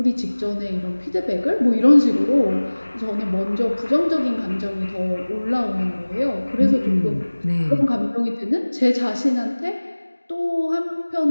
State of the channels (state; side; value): inverted; both; correlation -1.00